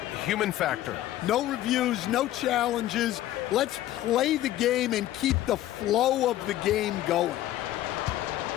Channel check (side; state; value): right; quieter; 14.1 dB